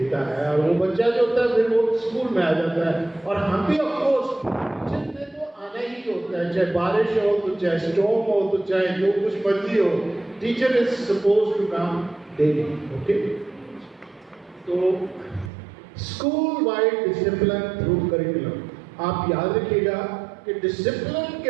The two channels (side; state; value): left; drops out; at 15.5 s